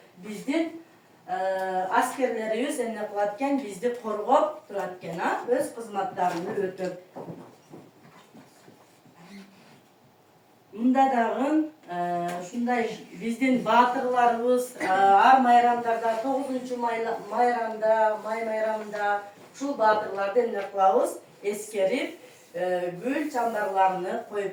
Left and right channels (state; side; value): identical; both; correlation 1.00